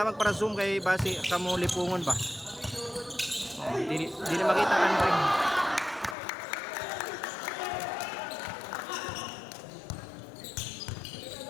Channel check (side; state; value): right; drops out; at 6.2 s